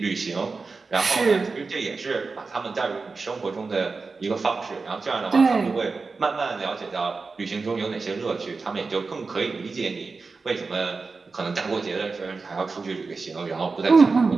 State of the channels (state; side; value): quieter; left; 4.2 dB